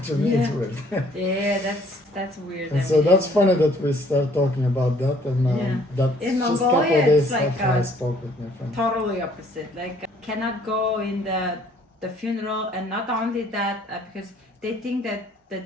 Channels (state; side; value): normal; both; correlation 0.60